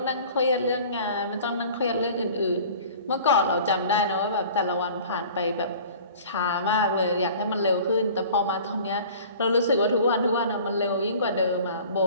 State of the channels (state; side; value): inverted; both; correlation -0.45